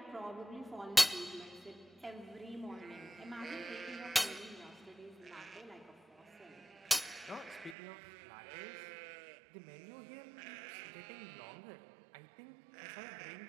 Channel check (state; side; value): drops out; left; at 7.8 s